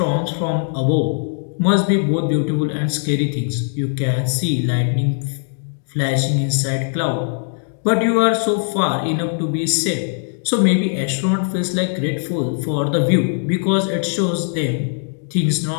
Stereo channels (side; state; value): right; silent; 66 dB below the other